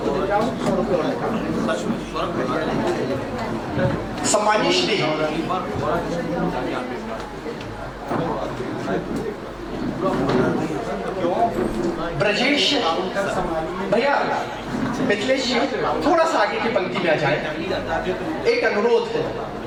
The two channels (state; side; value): identical; both; correlation 1.00